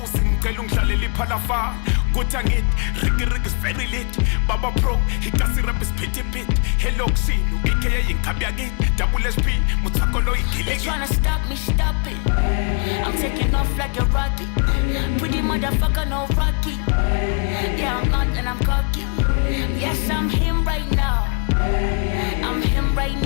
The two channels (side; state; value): right; quieter; 35.2 dB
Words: ngicela ungidlalele iphalafala Kuthi angithi Ricky is very lit Baba Pro Hikasi rap is pity pit Hello Ksinu AKA inkabi yakithi Double SP Mutsakolo igiliki They tryna stop me, stop it I'm taking off like a rocket Pretty motherfucker, no Rocky Yeah, I'm not and I'm cocky Yes, I'm him right now I'm him right